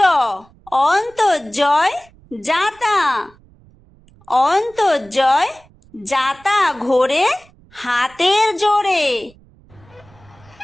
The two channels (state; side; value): noise; right; rumble, 28 dB below the sound